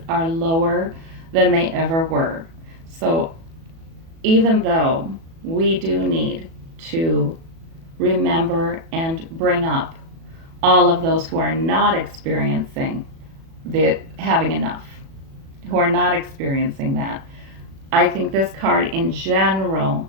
are lower than they ever were. So even though we do need to remember and bring up all of those who are not experiencing having enough, who are not experiencing that, I think this card in general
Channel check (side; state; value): left; late; 37 ms